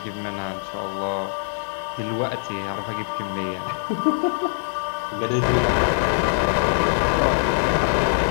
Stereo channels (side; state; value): right; silent; digital silence